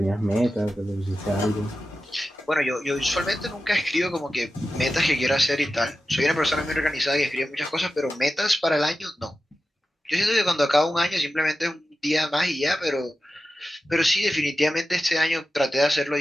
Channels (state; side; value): normal; both; correlation 0.93